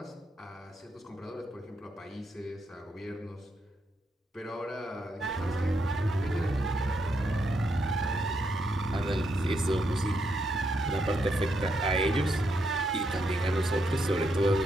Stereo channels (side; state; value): both; normal; correlation 0.79